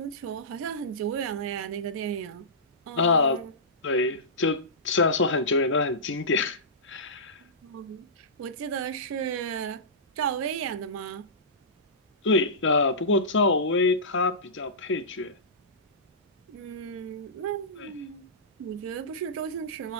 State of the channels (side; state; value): both; normal; correlation -0.20